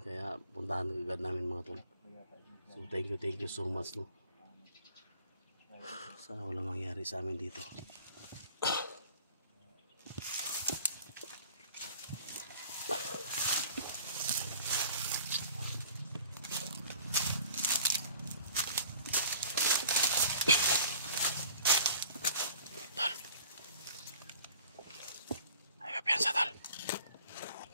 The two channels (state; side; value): inverted; both; correlation -0.49